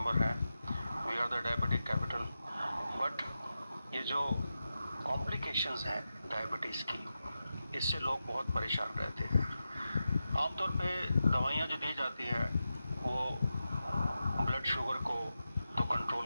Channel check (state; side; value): inverted; both; correlation -0.91